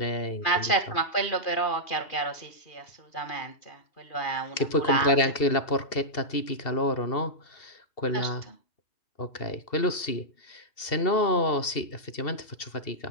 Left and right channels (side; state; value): right; late; 2.7 ms